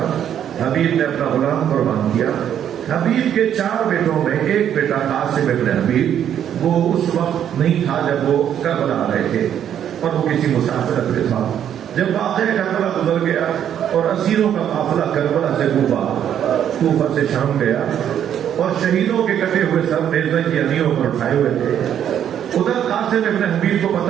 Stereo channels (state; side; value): quieter; left; 9.7 dB